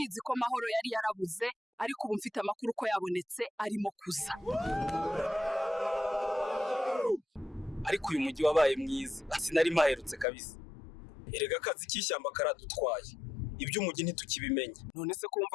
ko Mahoro yari yarabuze ariko ubu mfite amakuru ko yabonetse arimo kuza. Ariko uyu mujyi wabaye mwiza. Sinari maherutse kabisa. Erega akazi k'ishyamba karadutwaye. Iby'umujyi ntitukibimenye. None se ko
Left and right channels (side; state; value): right; drops out; at 10.2 s